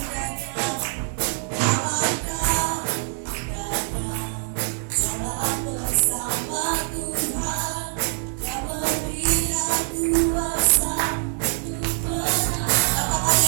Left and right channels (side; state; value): left; silent; digital silence